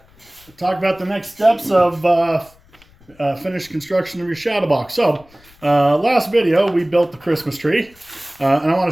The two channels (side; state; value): left; noise; rumble, 29 dB below the sound